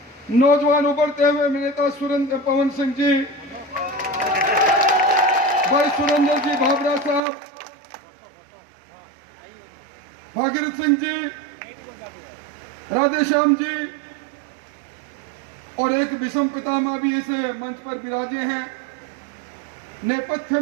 नौजवान उभरते हुए नेता सुरेंद्र पवन सिंह जी, भाई सुरेंद्र जी भाबरा साहब, भागीरथ सिंह जी, राधेश्याम जी और एक विषम पितामह भी इस मंच पर विराजे हैं। नेपथ्य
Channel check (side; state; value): left; drops out; at 7.2 s